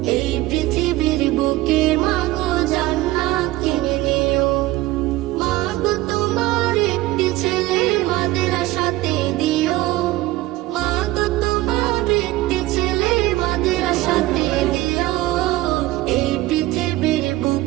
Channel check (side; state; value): left; quieter; 17.9 dB